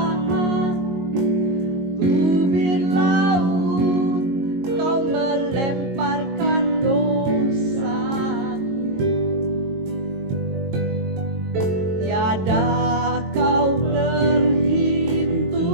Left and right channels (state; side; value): late; left; 22 ms